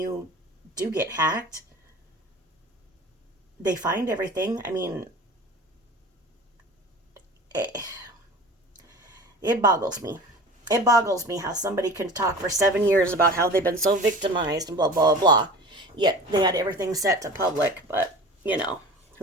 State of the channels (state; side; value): normal; both; correlation 0.38